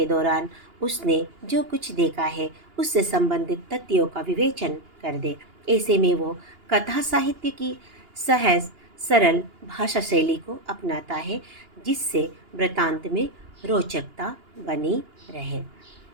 दौरान उसने जो कुछ देखा है उससे संबंधित तथ्यों का विवेचन कर दे। ऐसे में वो कथा साहित्य की सहज सरल भाषा शैली को अपनाता है, जिससे वृतांत में रोचकता बनी रहे।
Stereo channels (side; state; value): left; late; 2.8 ms